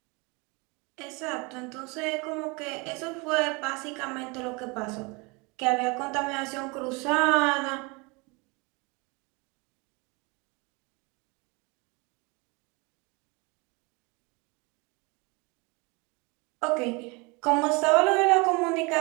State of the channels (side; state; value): left; quieter; 28.2 dB